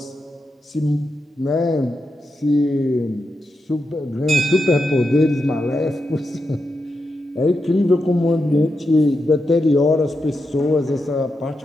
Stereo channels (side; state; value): both; normal; correlation 0.87